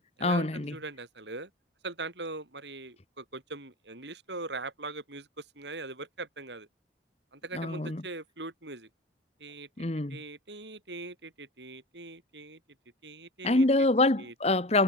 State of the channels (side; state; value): both; normal; correlation 0.30